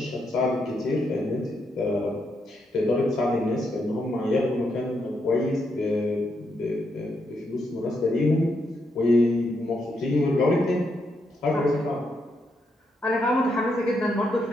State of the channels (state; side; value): normal; both; correlation 0.80